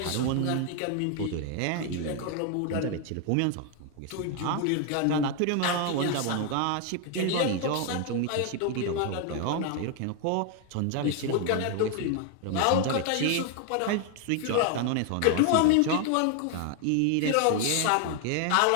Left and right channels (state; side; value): different; both; correlation 0.01